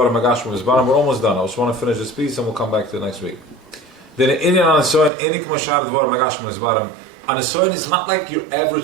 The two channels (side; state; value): left; drops out; at 5.1 s